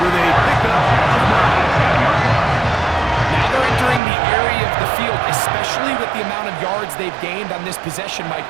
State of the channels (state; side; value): drops out; left; at 4.0 s